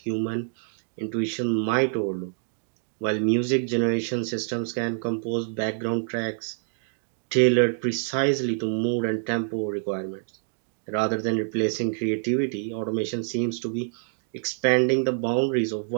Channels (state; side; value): silent; left; digital silence